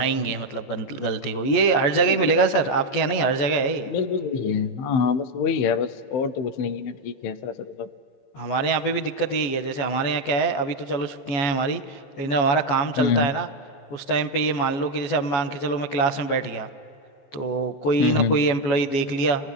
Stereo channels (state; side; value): late; right; 14 ms